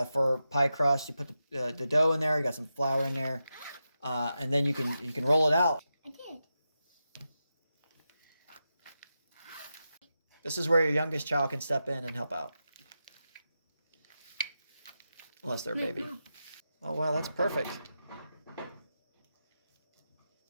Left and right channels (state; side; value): inverted; both; correlation -0.89